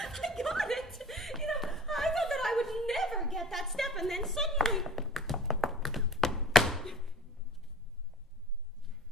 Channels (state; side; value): normal; both; correlation 0.42